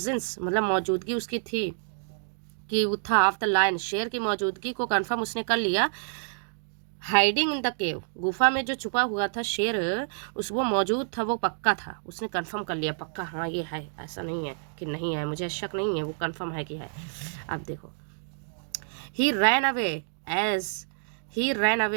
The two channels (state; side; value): silent; left; digital silence